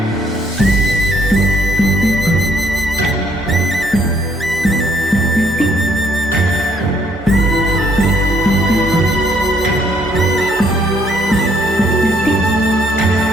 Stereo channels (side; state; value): both; normal; correlation 0.67